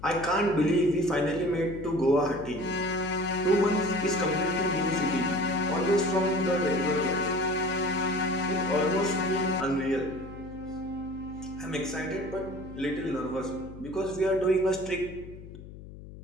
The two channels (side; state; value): left; noise; hum, 15 dB below the sound